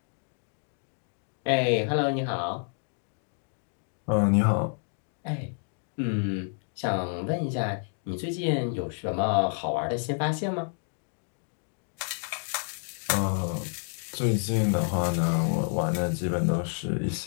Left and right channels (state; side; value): silent; right; 56 dB below the other